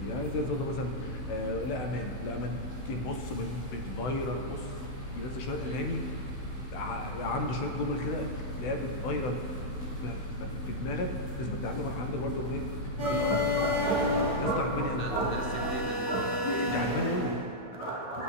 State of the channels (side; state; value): right; late; 16 ms